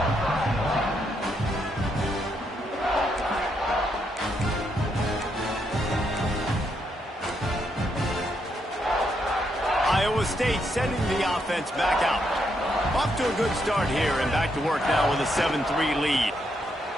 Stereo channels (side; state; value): both; normal; correlation 0.78